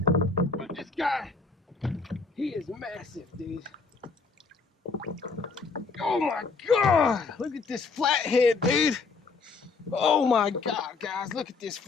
But this guy, he is massive, dude. Oh my God! Look at this flathead, dude. Oh my God, guys, look at this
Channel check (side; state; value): right; quieter; 4.4 dB